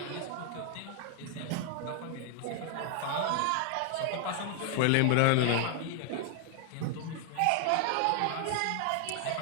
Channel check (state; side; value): different; both; correlation 0.00